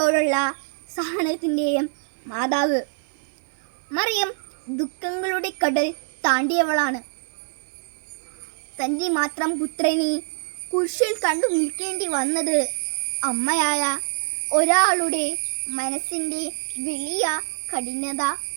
സഹനത്തിൻ്റെയും മാതാവ് മറിയം ദുഃഖങ്ങളുടെ കടൽ താണ്ടിയവളാണ്. തൻ്റെ മാത്രം പുത്രനെ കുരിശിൽ കണ്ടു നിൽക്കേണ്ടി വന്നത് അമ്മയായ ഒരാളുടെ മനസ്സിൻ്റെ വലിയ കഠിനത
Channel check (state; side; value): silent; left; 62 dB below the other